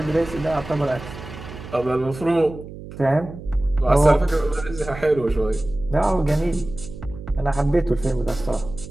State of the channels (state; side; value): noise; right; hum, 13 dB below the sound